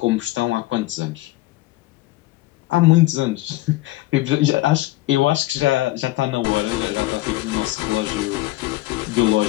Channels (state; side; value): quieter; right; 17.9 dB